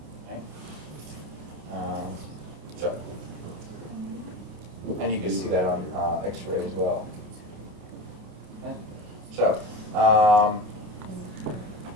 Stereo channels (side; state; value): left; late; 28 ms